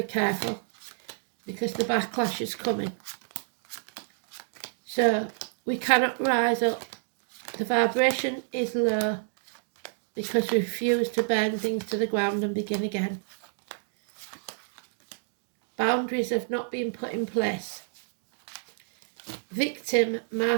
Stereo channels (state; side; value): silent; left; digital silence